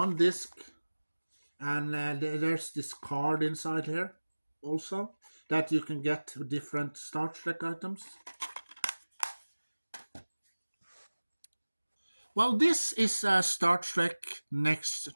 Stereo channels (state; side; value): inverted; both; correlation -1.00